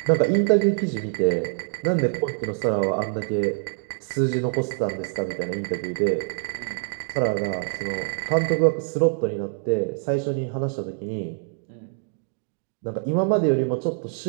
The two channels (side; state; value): left; silent; 62 dB below the other